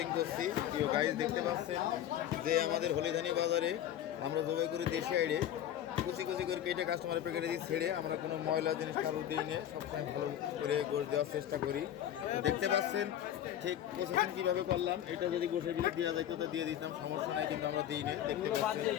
করছি। প্রিয় গাইস দেখতে পাচ্ছেন যে আমাদের হলিধানি বাজারে আমরা জবাই করে দেশি আইডে কুচি কুচি করে কেটে কাস্টমারের প্যাকেটে দিয়ে ছেড়ে আমরা কোনো ময়লা জিনিস কারোর দিই নিয়ে সবসময় ভালো করে গোশ দেওয়ার চেষ্টা করি। দেখতে পাচ্ছেন ঠিক প্রসেসিং কীভাবে করলাম। এটা যদি গোশের ভিতরে দেওয়া যাইতো তো দিয়ে দিতাম, সমস্যা নাই, কিন্তু আমরা দিই না। দেখতে পাচ্ছেন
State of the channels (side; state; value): right; quieter; 11.1 dB